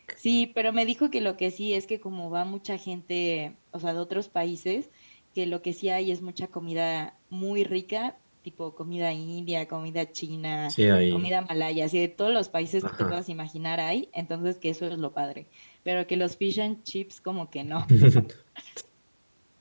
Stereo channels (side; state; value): both; inverted; correlation -1.00